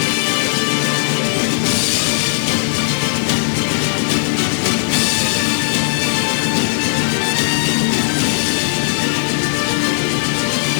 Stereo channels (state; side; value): silent; right; digital silence